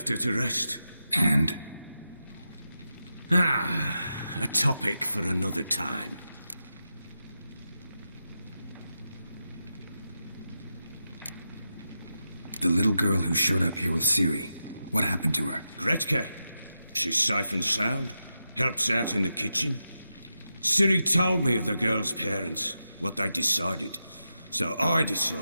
her to rest. And? A topic for another time. The little girl who showed up here with Ciri, what happened to her? Gretka. She's safe and sound. Helps out in the kitchen. Ciri told me of the girl's parents, what they decided. So I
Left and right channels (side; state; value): both; inverted; correlation -0.88